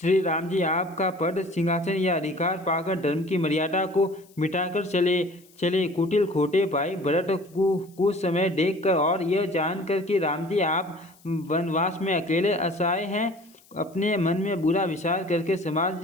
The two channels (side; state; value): left; noise; hiss, 29 dB below the sound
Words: राम जी आपका पद सिंहासन या अधिकार पाकर धर्म की मर्यादा को मिटाकर चले। कुटिल खोटे भाई भरत कुछ समय देखकर और यह जानकर कि राम जी आप वनवास में अकेले असहाय हैं, अपने मन में बुरा विचार करके